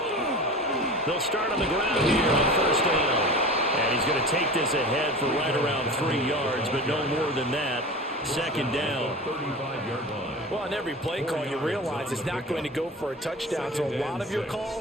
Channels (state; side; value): normal; both; correlation 0.34